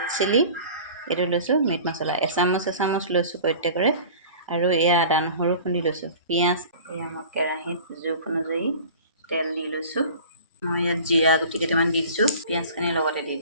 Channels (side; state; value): both; inverted; correlation -0.41